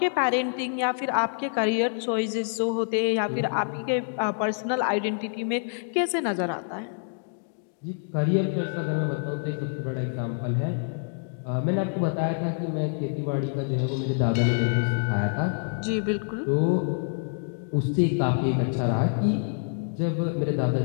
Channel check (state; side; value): silent; right; digital silence